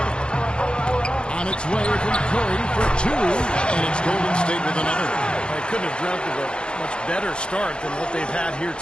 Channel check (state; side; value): late; right; 0.053 ms